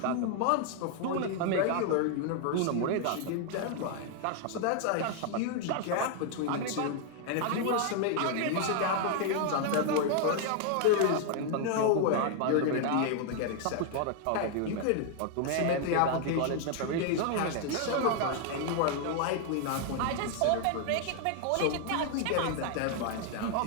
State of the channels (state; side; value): different; both; correlation 0.00